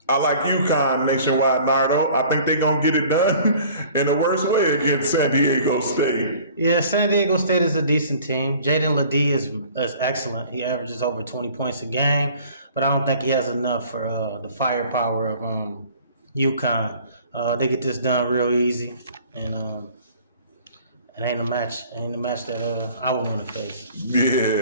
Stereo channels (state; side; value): inverted; both; correlation -0.50